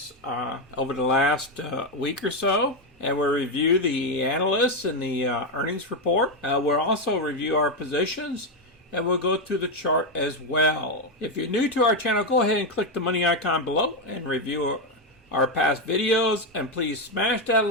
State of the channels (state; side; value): normal; both; correlation 0.06